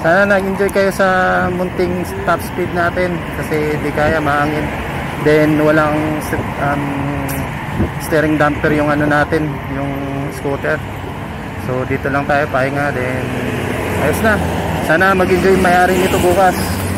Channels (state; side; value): identical; both; correlation 1.00